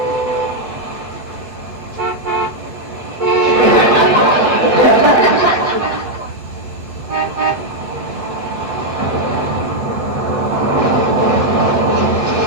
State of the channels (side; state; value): left; late; 8.1 ms